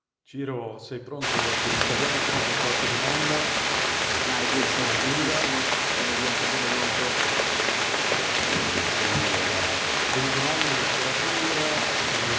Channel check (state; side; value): identical; both; correlation 1.00